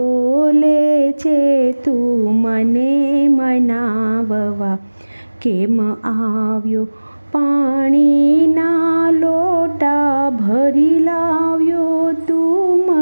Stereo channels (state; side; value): inverted; both; correlation -1.00